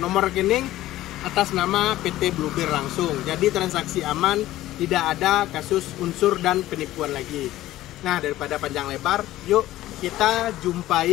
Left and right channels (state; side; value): quieter; right; 15.2 dB